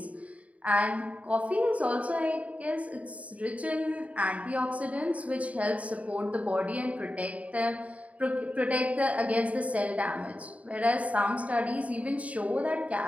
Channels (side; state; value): left; late; 0.068 ms